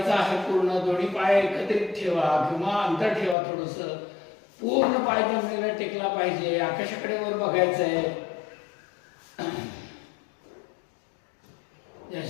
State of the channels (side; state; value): right; drops out; at 3.4 s